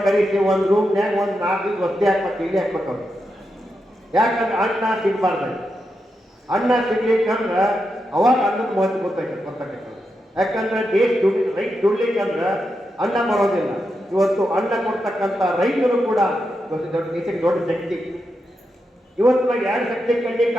ಕರೆಸಿ ಒಂದು ರೂಮ್ನ್ಯಾಗ ಒಂದು 4 ಒತ್ತೆ ಹಾಕ್ಬೇಕು, ಇಲ್ಲಿ ಹಾಕ್ಬೇಕು ಅವ್ರು. ಯಾಕಂದ್ರೆ ಅನ್ನ ಸಿಗಬಾರ್ದು. ಅನ್ನ ಸಿಗ್ಲಿಕ್ಕಂದ್ರೆ ಅವಾಗ ಅನ್ನದ ಮಹತ್ವ ಗೊತ್ತಾಗತ್ತೆ. ಯಾಕಂದ್ರೆ ದೇಶ ರೈತ ದುಡ್ಲಿಕ್ಕಂದ್ರೆ ಅನ್ನ ಬರೋದಿಲ್ಲ. ಇವತ್ತು ಅನ್ನ ಕೊಡ್ತಕ್ಕಂಥ ರೈತರು ಕೂಡ ದೇಶಕ್ಕೆ ದೊಡ್ಡ ಶಕ್ತಿ. ಇವತ್ತು ನಾವು 2 ಶಕ್ತಿ ಕಣ್ಣಿಗೆ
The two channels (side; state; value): both; normal; correlation 0.86